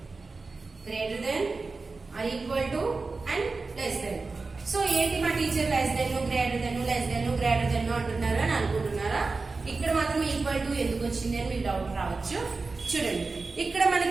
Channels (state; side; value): quieter; left; 3.9 dB